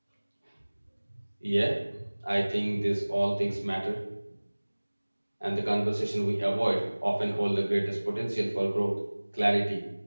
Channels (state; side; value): inverted; both; correlation -1.00